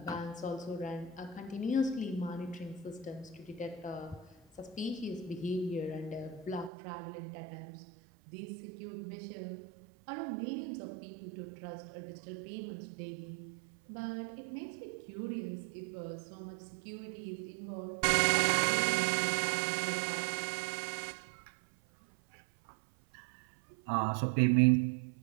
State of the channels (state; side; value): drops out; left; at 6.7 s